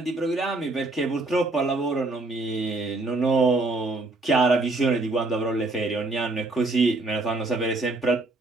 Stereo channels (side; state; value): left; quieter; 3.0 dB